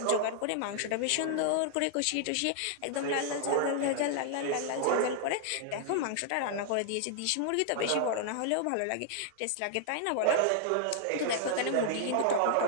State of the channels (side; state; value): both; different; correlation -0.01